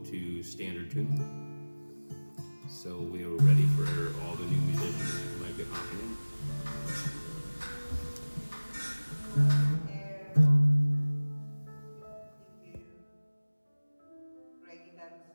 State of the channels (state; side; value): inverted; both; correlation -1.00